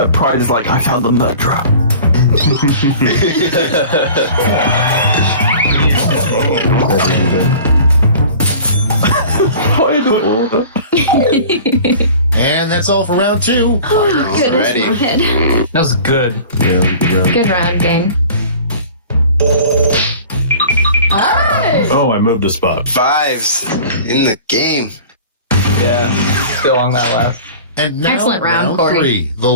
pride is like, I found the murderer. Final order. And that's all for round 2. Oh, goodness. Ready. my head. That was good. Yeah, Good round, gang. Oh, I moved a spot. 5s in the game. Yeah. Still on that last. And now Excellent round, Corey. 3, the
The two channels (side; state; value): both; inverted; correlation -0.42